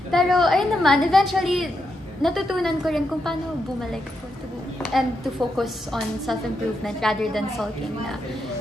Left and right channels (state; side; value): normal; both; correlation 0.83